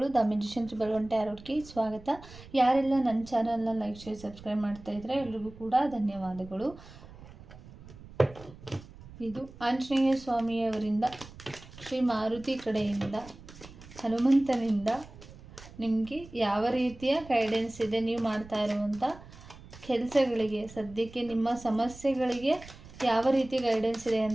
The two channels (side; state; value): right; noise; rumble, 18 dB below the sound